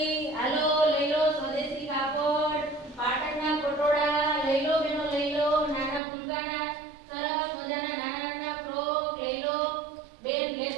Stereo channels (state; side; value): drops out; left; at 6.0 s